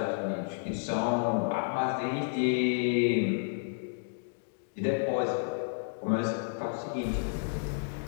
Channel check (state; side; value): silent; right; digital silence